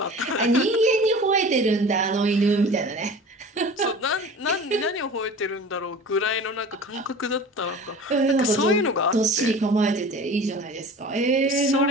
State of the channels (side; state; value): both; normal; correlation 0.39